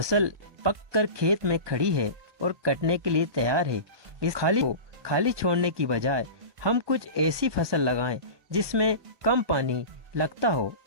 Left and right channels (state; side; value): late; left; 1.2 ms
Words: पककर खेत में खड़ी है और कटने के लिए तैयार है। इस खाली छोड़ने की बजाय हम कुछ ऐसी फसल लगाएं जिसमें कम पानी लगता हो